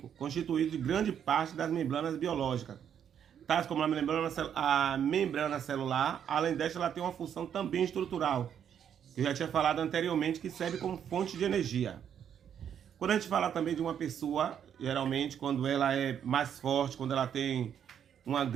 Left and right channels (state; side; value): quieter; left; 8.8 dB